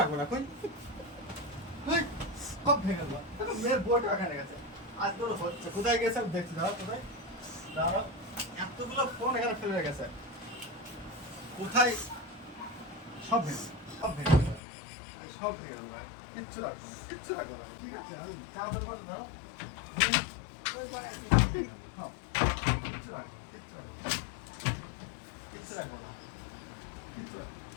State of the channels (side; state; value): right; drops out; at 14.6 s